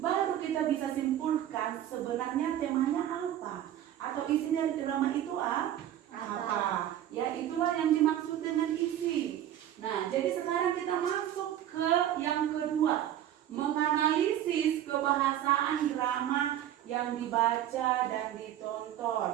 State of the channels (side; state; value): left; quieter; 11.6 dB